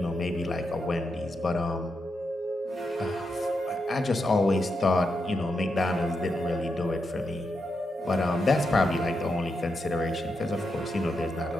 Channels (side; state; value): both; normal; correlation 0.84